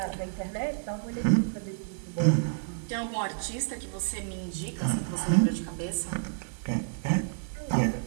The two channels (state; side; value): silent; left; 58 dB below the other